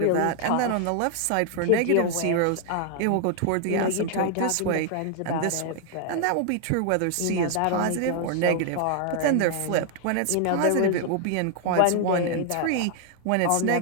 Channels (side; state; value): both; different; correlation 0.00